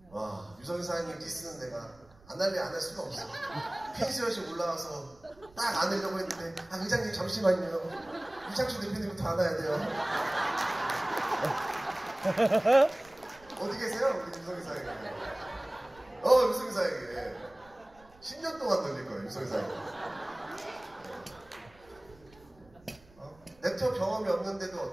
와, 유성희 사장님 디스는 내가 안 할 수가 없어. 펜시엇이 올라와서 딱 안으려고 했는데 의장님 잠시만요. 유창준 대표님부터 안아야 돼요. 어디 계세요? 우리 유성희 사장님. 유성희 사장님. 10년 동안 돌릴 거예요, 유성희 사장님. 네트워크 경험이 없는데도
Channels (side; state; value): right; noise; rumble, 26 dB below the sound